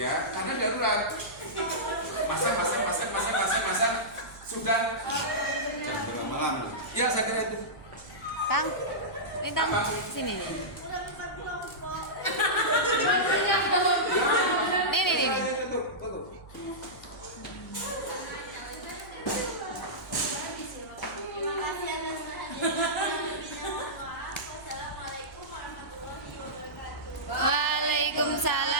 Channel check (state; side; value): noise; right; hum, 21 dB below the sound